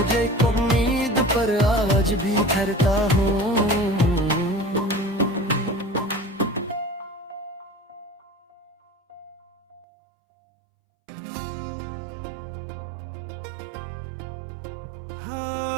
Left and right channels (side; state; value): left; drops out; at 9.9 s